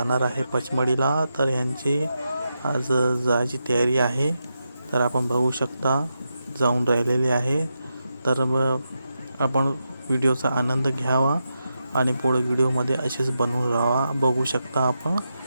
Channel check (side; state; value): both; inverted; correlation -0.87